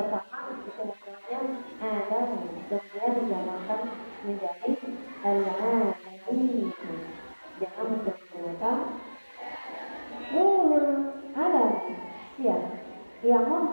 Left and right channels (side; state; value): both; inverted; correlation -1.00